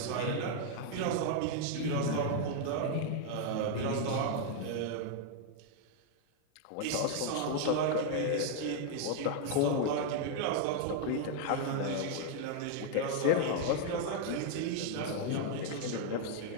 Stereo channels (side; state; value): both; different; correlation 0.00